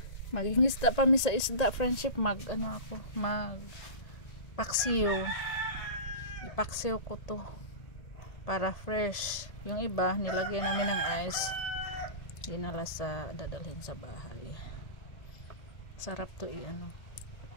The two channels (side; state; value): right; late; 1.8 ms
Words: Magingisda pa mi sa isda friendship. Mag paksiw. Ipaksiw ko to para fresh. Yung iba nilagyan namin ng ice, dinala dadalhin sa bahay. Sarap to